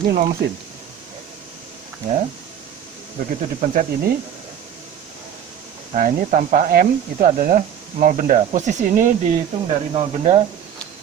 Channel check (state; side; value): quieter; left; 9.2 dB